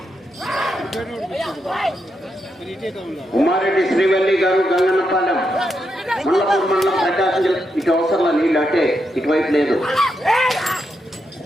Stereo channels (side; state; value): both; normal; correlation 0.83